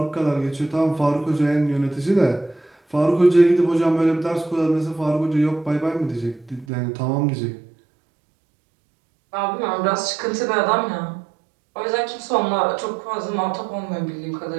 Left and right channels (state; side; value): drops out; left; at 6.7 s